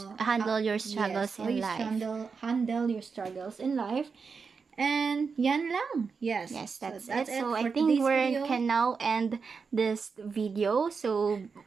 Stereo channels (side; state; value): left; quieter; 5.3 dB